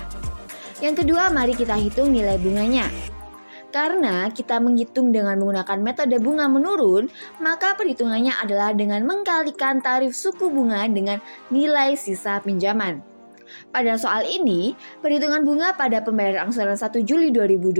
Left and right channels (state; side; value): inverted; both; correlation -1.00